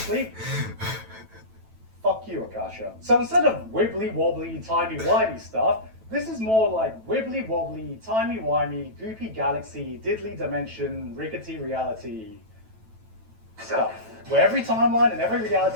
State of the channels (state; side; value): late; left; 9.1 ms